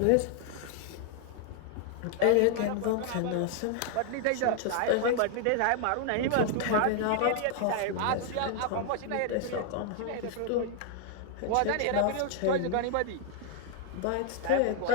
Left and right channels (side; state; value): both; different; correlation 0.00